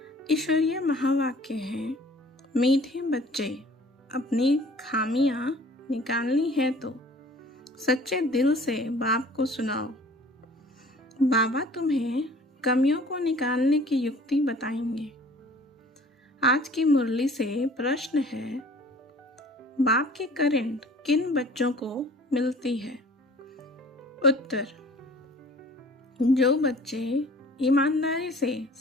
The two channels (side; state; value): both; normal; correlation 0.49